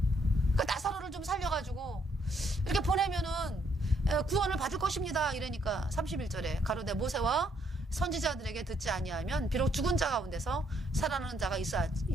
그 나사로를 좀 살려가지고 이렇게 보내면은 구원을 받을 것입니다. 이러니까 31절에 가로되 모세와 선지자들에게 듣지 아니하면 비록 죽은 자 가운데서 살아나는 자가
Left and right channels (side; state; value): both; normal; correlation 0.70